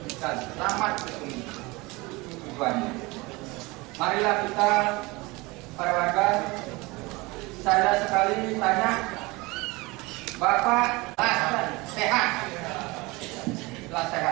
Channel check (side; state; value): left; quieter; 23.6 dB